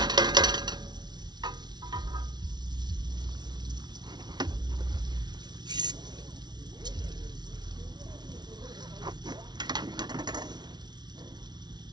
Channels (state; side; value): late; left; 0.20 ms